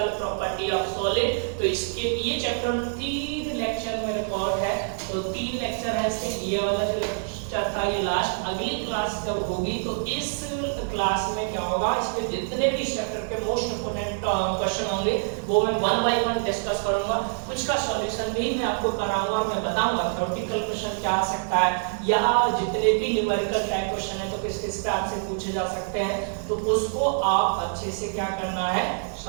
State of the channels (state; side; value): silent; left; digital silence